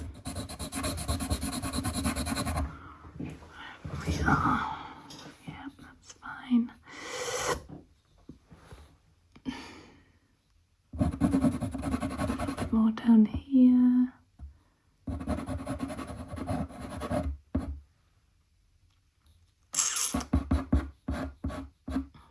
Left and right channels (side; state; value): both; identical; correlation 1.00